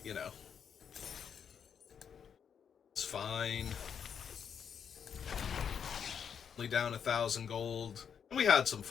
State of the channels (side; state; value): right; quieter; 7.5 dB